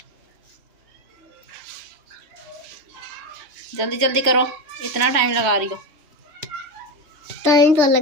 जल्दी जल्दी करो, इतना टाइम लगा रही हो। टाइम तो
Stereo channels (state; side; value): late; left; 3.1 ms